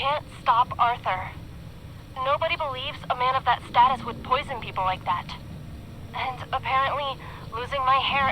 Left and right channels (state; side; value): identical; both; correlation 1.00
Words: stop Arthur. Nobody believes a man of that status would poison people like that. And apparently, losing my hair